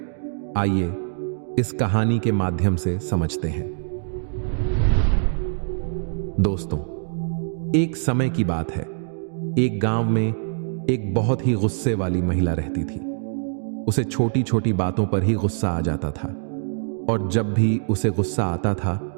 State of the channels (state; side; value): silent; left; digital silence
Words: आइए इस कहानी के माध्यम से समझते हैं। दोस्तों, एक समय की बात है। एक गांव में एक बहुत ही गुस्से वाली महिला रहती थी। उसे छोटी छोटी बातों पर ही गुस्सा आ जाता था और जब भी उसे गुस्सा आता था